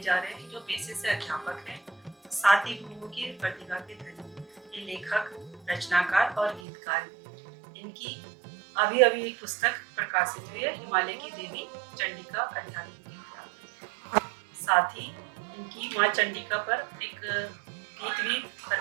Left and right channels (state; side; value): drops out; left; at 6.6 s